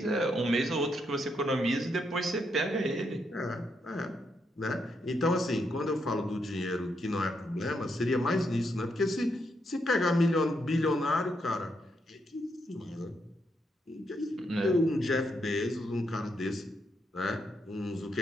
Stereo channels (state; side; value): normal; both; correlation 0.79